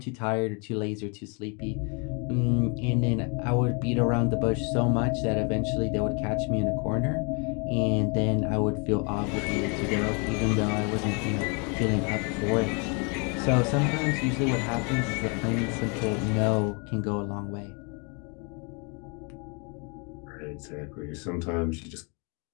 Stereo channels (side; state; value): right; quieter; 34.0 dB